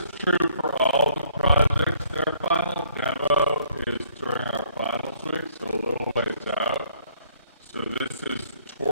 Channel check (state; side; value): inverted; both; correlation -0.63